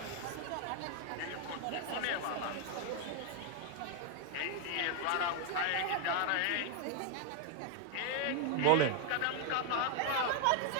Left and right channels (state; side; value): different; both; correlation 0.00